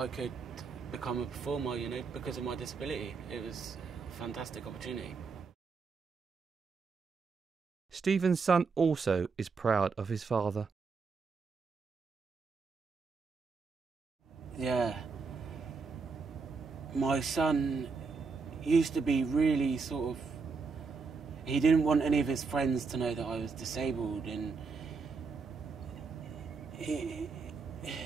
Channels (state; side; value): quieter; left; 4.8 dB